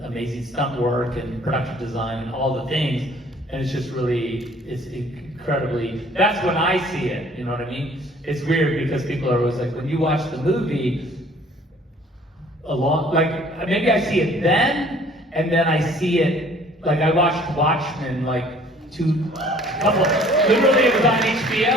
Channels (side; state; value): both; normal; correlation 0.54